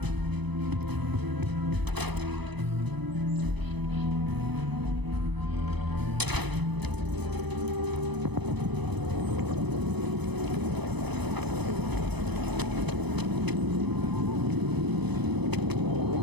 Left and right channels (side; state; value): left; late; 0.99 ms